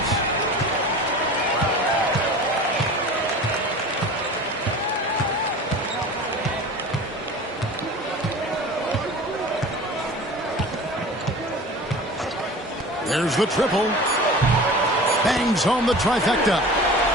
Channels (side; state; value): both; normal; correlation 0.38